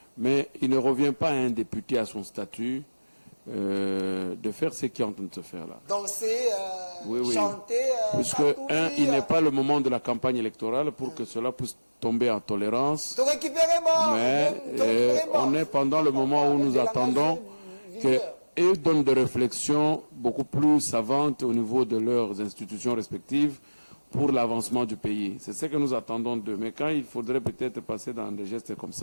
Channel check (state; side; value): inverted; both; correlation -1.00